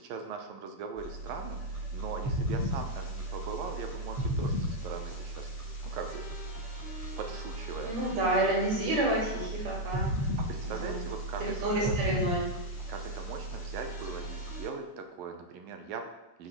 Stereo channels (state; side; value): late; left; 11 ms